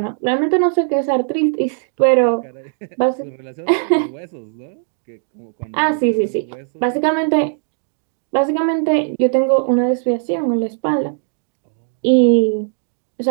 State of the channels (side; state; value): left; silent; digital silence